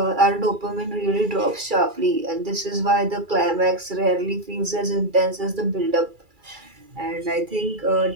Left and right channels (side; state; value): left; late; 2.3 ms